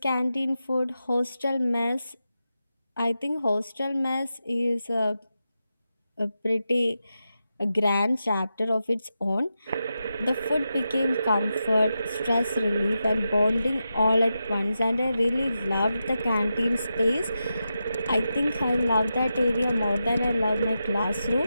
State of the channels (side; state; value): both; inverted; correlation -0.89